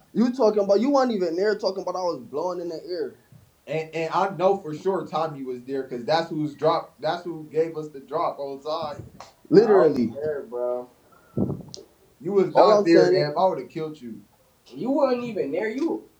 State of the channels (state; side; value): identical; both; correlation 1.00